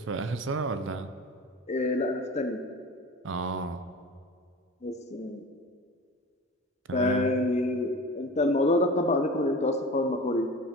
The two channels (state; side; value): normal; both; correlation 0.35